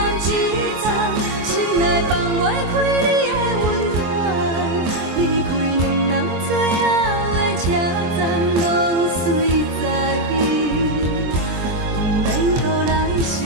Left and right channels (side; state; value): left; late; 24 ms